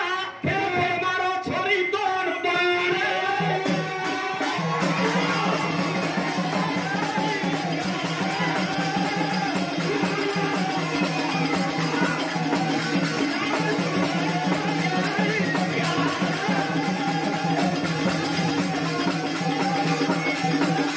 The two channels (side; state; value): both; identical; correlation 1.00